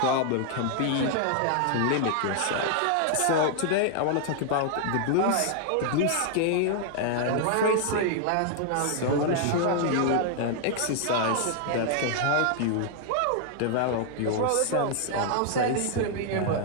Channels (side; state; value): both; different; correlation 0.00